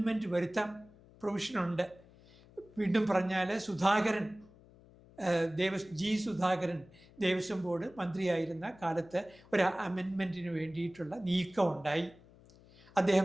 വരുത്താൻ പ്രൊവിഷനുണ്ട്. വീണ്ടും പറഞ്ഞാൽ സുധാകരൻ, ജി സുധാകരൻ ദേവസ്വം ബോർഡ് മന്ത്രിയായിരുന്ന കാലത്ത് ഒരു അമെൻമെൻറ്റിന് വേണ്ടിയിട്ടുള്ള നീക്കമുണ്ടായി.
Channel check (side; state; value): left; noise; hum, 24 dB below the sound